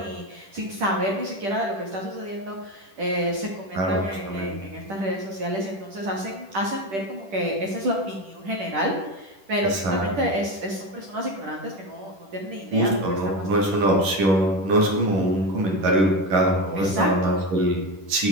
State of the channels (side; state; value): left; late; 10 ms